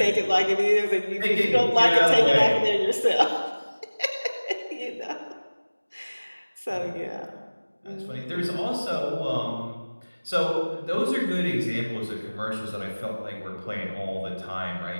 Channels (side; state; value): both; inverted; correlation -1.00